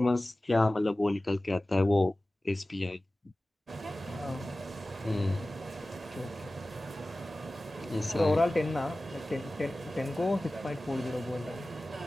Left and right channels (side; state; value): both; normal; correlation 0.97